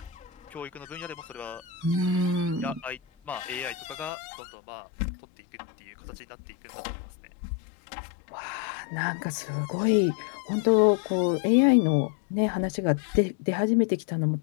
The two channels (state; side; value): drops out; right; at 4.1 s